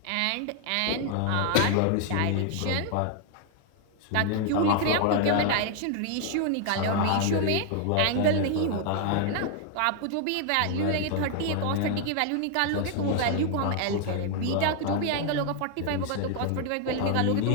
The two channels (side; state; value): both; different; correlation 0.00